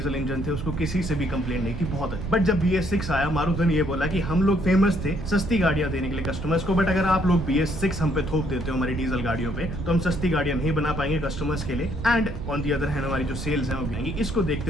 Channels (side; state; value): right; noise; rumble, 6 dB below the sound